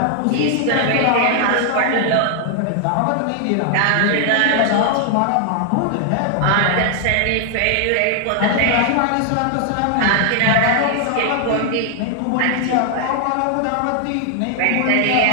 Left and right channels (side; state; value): both; different; correlation 0.00